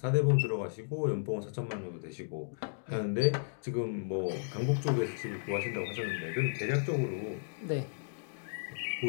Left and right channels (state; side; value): silent; right; digital silence